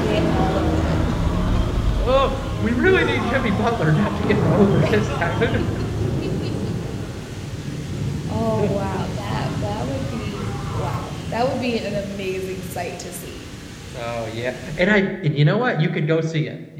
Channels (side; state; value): both; identical; correlation 1.00